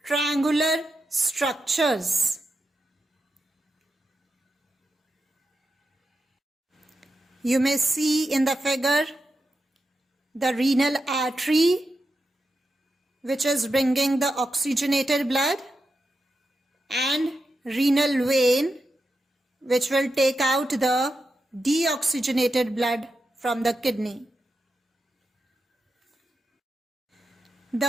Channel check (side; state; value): both; normal; correlation 0.88